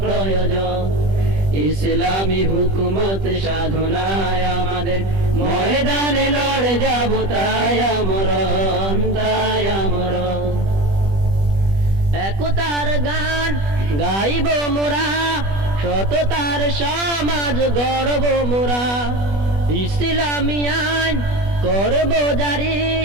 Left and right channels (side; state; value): left; late; 20 ms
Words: প্রয়োজন। ইসলামী হুকুমত সাধনায় আমাদের ময়দানে লড়ে যাব, তাই আমরণ, তাই আমরণ। একতার গান গাইব মোরা, সততার সমাজ গড়ব মোরা। ইসলামী আইন করব জারি,